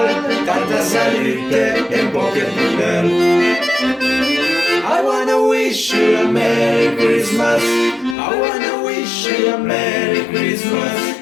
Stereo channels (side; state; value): right; drops out; at 8.2 s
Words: tanta salute e poche boneur. I wanna wish you a Merry Christmas. I wanna wish you a Merry Christmas.